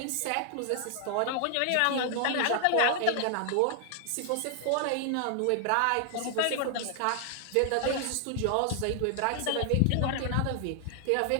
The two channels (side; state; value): both; different; correlation 0.00